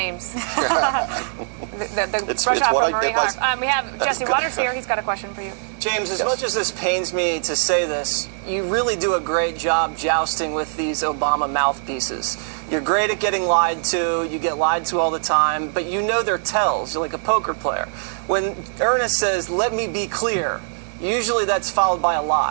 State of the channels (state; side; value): silent; left; 64 dB below the other